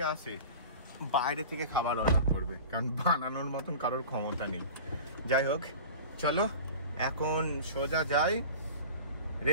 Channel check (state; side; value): inverted; both; correlation -0.36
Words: আসে বাইরে থেকে খাবার অর্ডার করবে, কারণ বানানোর মতন কারোর ক্ষমতা নেই। যাই হোক চলো এখন সোজা যাই